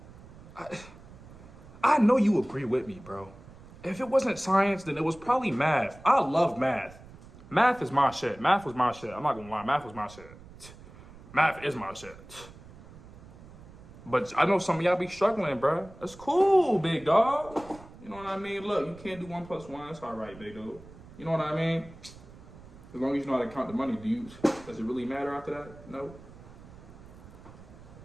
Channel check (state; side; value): noise; right; rumble, 19 dB below the sound